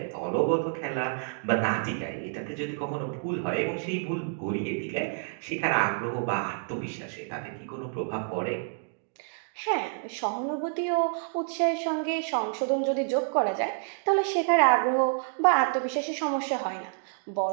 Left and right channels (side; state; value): left; silent; 59 dB below the other